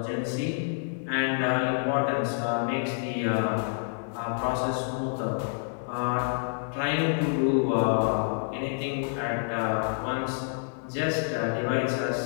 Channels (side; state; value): right; silent; digital silence